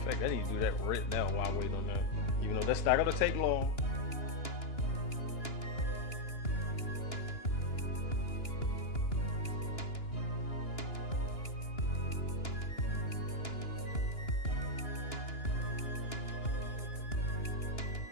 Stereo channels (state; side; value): late; right; 2.9 ms